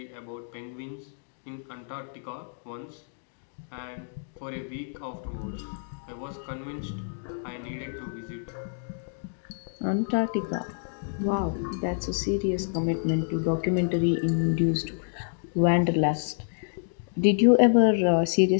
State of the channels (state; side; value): silent; right; digital silence